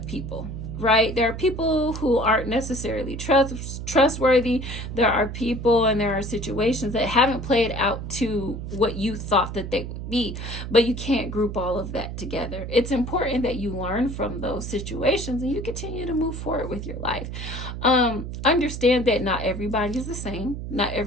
people, right? There are people who aren't necessarily trustworthy. There are people and there are situations that haven't played out to what you thought that they would be, but you can't group all of that together. It's important that you learn from those situations and you continue to move forward with your life. Understand that not everybody is the same. Not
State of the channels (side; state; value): right; noise; hum, 7 dB below the sound